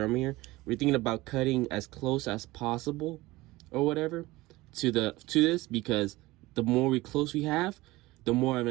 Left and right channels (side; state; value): left; quieter; 19.7 dB